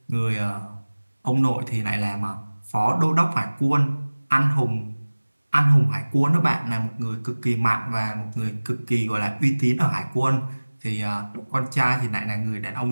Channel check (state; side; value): inverted; both; correlation -1.00